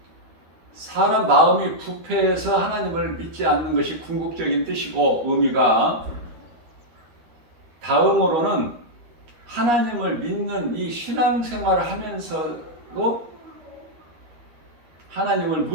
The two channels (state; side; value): late; left; 13 ms